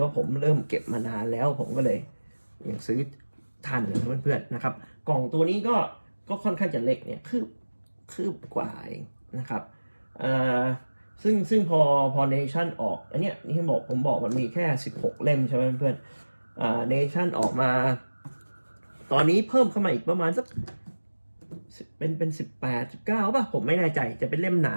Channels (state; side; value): inverted; both; correlation -1.00